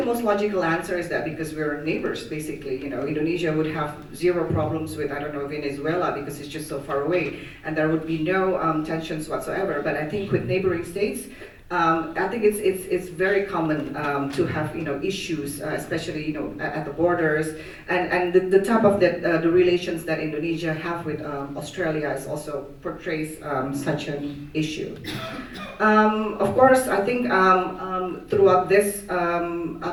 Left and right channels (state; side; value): identical; both; correlation 1.00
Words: most logical answer is that because we're neighbors, basically. Indonesia would have zero problems with, I don't know, Venezuela, because it's just so far away, and there would be no tensions whatsoever. But I think with neighboring states, I think it's very common to have issues, especially at the borders, and the type of the relations that Indonesia have with Australia is also portrays such an issue. Of course, I think throughout this